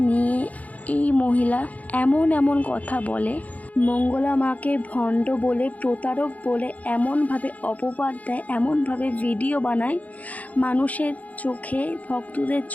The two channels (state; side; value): late; right; 0.073 ms